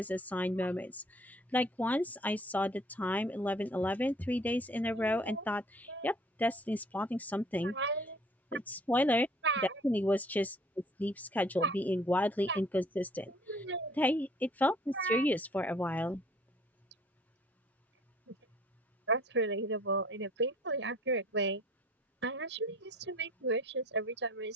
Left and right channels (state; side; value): normal; both; correlation 0.55